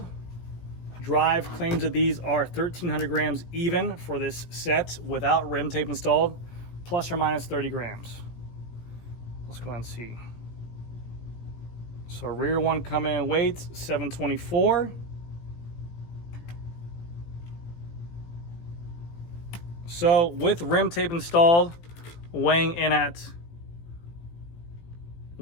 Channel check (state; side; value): late; right; 18 ms